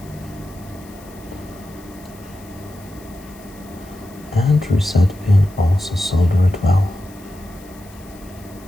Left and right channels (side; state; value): left; noise; hiss, 24 dB below the sound